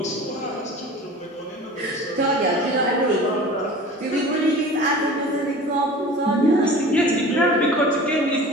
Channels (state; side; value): normal; both; correlation 0.39